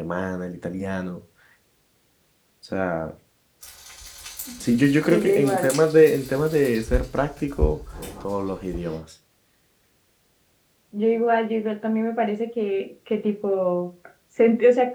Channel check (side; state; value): both; identical; correlation 1.00